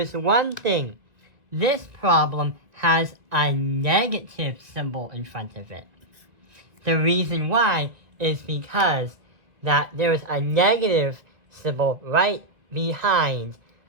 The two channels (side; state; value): left; late; 1.9 ms